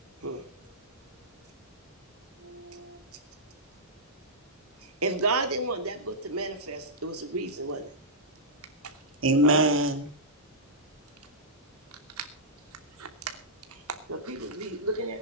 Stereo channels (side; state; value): both; normal; correlation -0.13